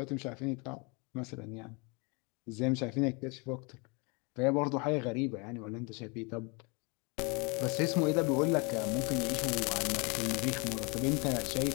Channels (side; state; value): right; quieter; 30.6 dB